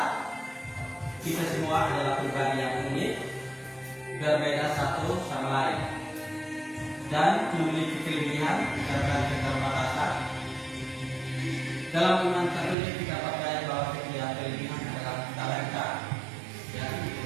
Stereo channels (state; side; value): drops out; left; at 12.8 s